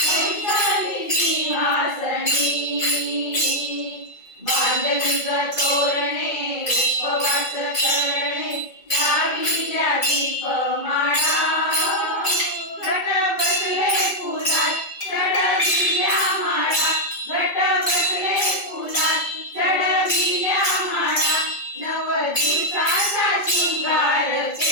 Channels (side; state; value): right; late; 2.3 ms